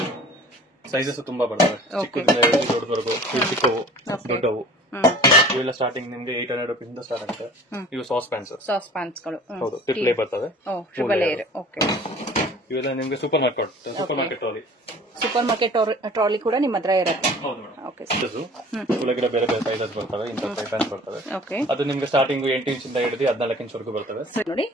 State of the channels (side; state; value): both; normal; correlation 0.45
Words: ಸೈಜಸ್ ತುಂಬಾ ಬರ್ತವೆ, ಚಿಕ್ಕದಿಂದ ದೊಡ್ಡವರೆಗೂ, ಚಿಕ್ಕವು ದೊಡ್ಡವು. ಇವೆಲ್ಲ ಸ್ಟಾರ್ಟಿಂಗ್ ನಿಮ್ಗೆ 800 ರೂಪೀಸ್ ಇಂದ ಸ್ಟಾರ್ಟ್ ಆಗುತ್ತೆ. ಇವು ಸಾಸ್ ಪ್ಯಾನ್ಸ್ ಗಳು, ಹೌದು, ಟ್ರಿಪ್ಲೇ ಬರ್ತವೆ. ಇವೆಲ್ಲ ನಿಮ್ಗೆ ಸೂಪರ್ ಮಾರ್ಕೆಟ್ ಟ್ರಾಲಿ ಕೂಡ ನಿಮ್ಮ ಹತ್ರ ಇರುತ್ತೆ. ಬೇರೆ ಬೇರೆ ಸೈಜಸ್ ಬರ್ತವೆ, ಇಂಥ ಫ್ರೈ ಪ್ಯಾನ್ಸ್ ಬರ್ತವೆ. ಅದು ನಿಮ್ಗೆ ಸ್ಟಾರ್ಟಿಂಗ್ 8 ಇಂಚಿಂದ ಹಿಡಿದು 14 ಇಂಚ್ ಬರ್ತವೆ. ನೋಡಿ,